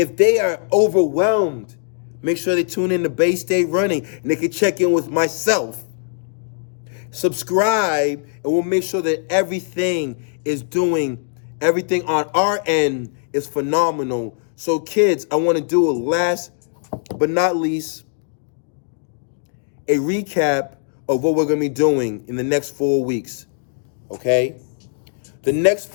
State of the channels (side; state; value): right; silent; digital silence